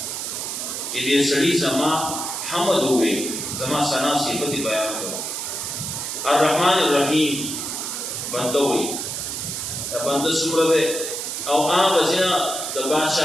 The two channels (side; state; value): right; noise; hiss, 4 dB below the sound